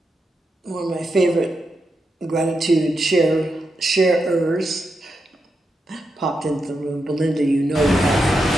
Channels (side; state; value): both; normal; correlation 0.86